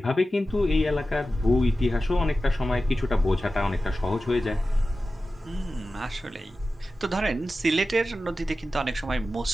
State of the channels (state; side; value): normal; both; correlation 0.94